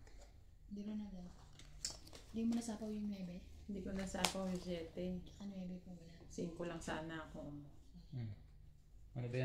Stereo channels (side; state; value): both; identical; correlation 1.00